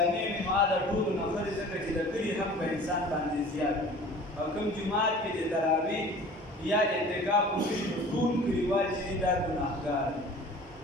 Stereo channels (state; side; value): normal; both; correlation 0.44